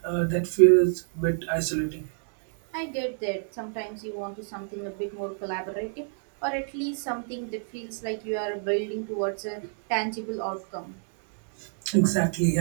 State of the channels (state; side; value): silent; left; digital silence